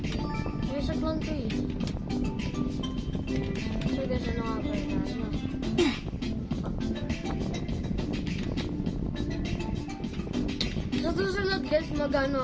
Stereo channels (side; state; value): both; identical; correlation 1.00